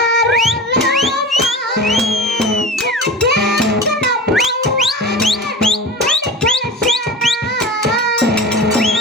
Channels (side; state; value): both; normal; correlation 0.32